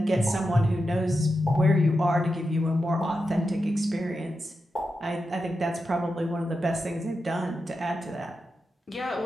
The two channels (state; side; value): normal; both; correlation 0.89